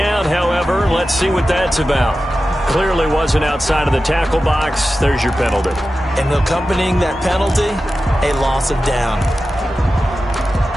however. Let's see what that's about. Clearly wasn't outside of the tackle box. There's your penalty. And accompanying that penalty, a loss of down.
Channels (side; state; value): both; normal; correlation 0.93